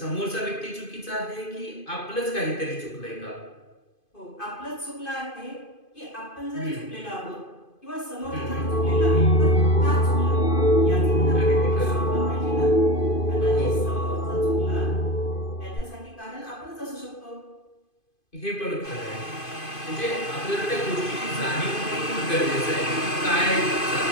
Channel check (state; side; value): late; right; 2.5 ms